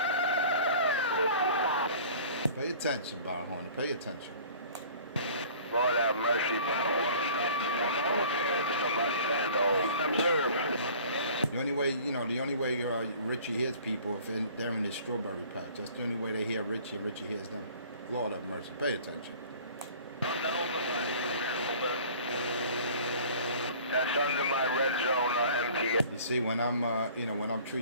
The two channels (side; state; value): both; inverted; correlation -0.48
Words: Pay attention, Brown Hornet. Pay attention. Lord have mercy, Brown Hornet. Somebody stand observe. The only way Richie hears people if they're in his strawberry patch. That's the only way they hear Richie and Richie hears them. Lord have mercy. Pay attention. That's under my red zone MTA. You see, when I'm when I'm